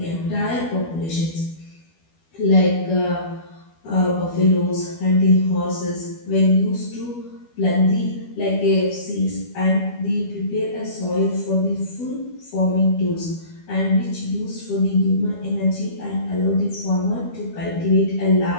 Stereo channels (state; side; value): late; right; 12 ms